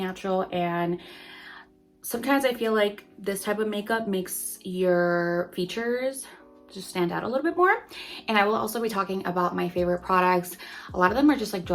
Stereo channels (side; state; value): both; identical; correlation 1.00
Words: And sometimes I feel like this type of makeup makes your features just stand out a little bit more. And I will also be talking about my favorite products. A lot of them are just like